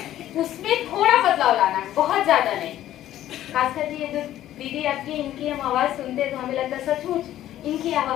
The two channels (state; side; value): quieter; right; 12.9 dB